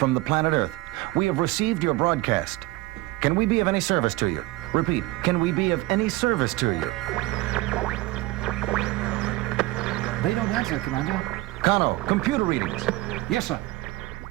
the planet Earth. We have received your broadcast. Can we be of any service to you? Repeat, can we be of any service to you? They don't answer, Commander. Kano, computer readings. Yes, sir.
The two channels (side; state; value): left; quieter; 19.4 dB